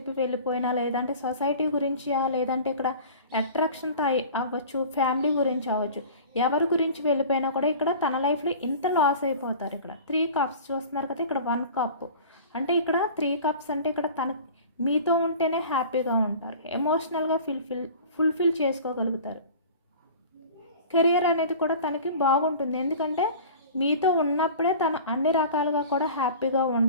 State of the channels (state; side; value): inverted; both; correlation -0.40